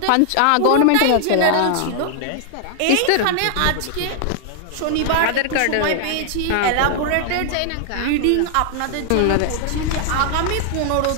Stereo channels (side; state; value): both; different; correlation 0.00